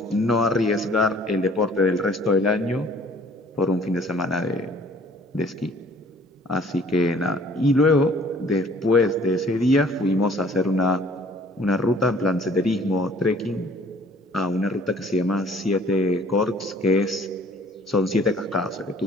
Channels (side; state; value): both; normal; correlation 0.55